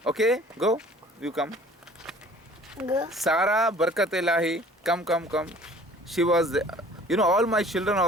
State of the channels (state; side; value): normal; both; correlation 0.50